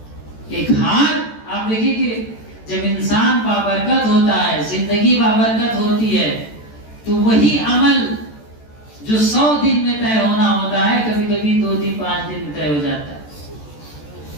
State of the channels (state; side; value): late; right; 14 ms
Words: ایک ہار، آپ دیکھیے کہ جب انسان بابرکت ہوتا ہے، زندگی بابرکت ہوتی ہے، تو وہی عمل جو 100 دن میں طے ہونا ہوتا ہے کبھی کبھی 2 دن 5 دن میں طے ہو جاتا ہے،